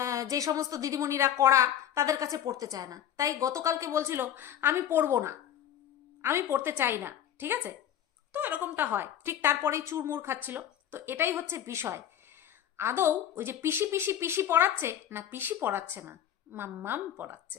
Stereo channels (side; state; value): right; quieter; 10.6 dB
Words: যে সমস্ত দিদিমণিরা করা তাদের কাছে পড়তে চায় না, তাই গতকালকে বলছিল আমি পড়বো না, আমি পড়তে চাই না, ঠিক আছে? তো এরকমটা হয়, ঠিক তারপরেই চুরমুর খাচ্ছিল। তো এটাই হচ্ছে বিষয়, আদৌ ওই যে পিসি পিসি পিসি পড়াচ্ছে না, পিসি পড়াচ্ছে না, মাম্মাম